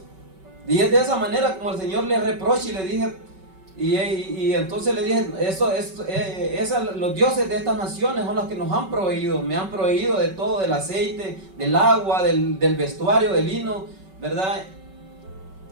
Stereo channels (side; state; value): left; late; 5.3 ms